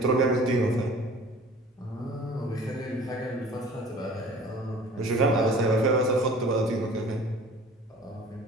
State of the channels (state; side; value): normal; both; correlation 0.46